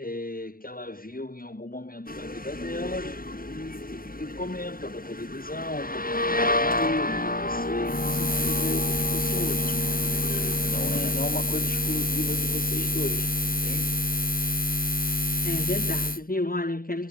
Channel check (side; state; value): right; late; 0.42 ms